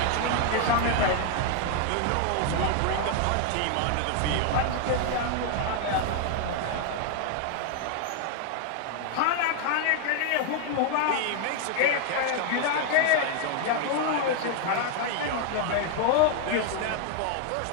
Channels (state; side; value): different; both; correlation 0.00